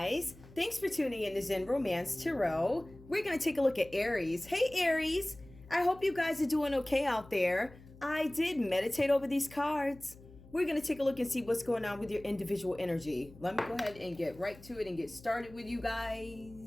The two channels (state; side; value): noise; left; hum, 21 dB below the sound